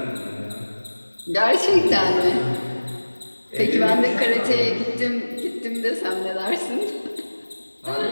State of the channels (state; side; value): inverted; both; correlation -1.00